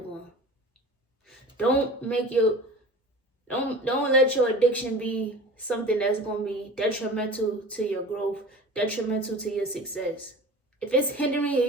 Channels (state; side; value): normal; both; correlation 0.38